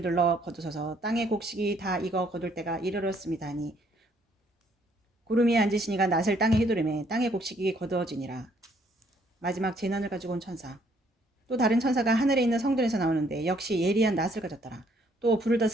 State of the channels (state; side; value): normal; both; correlation 0.66